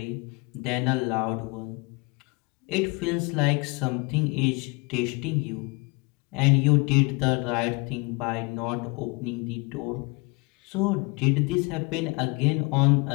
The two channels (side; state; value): right; quieter; 27.7 dB